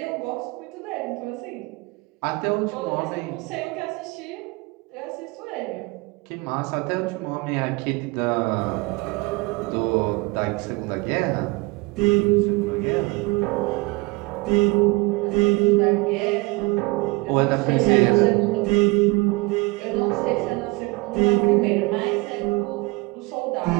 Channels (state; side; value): quieter; left; 25.2 dB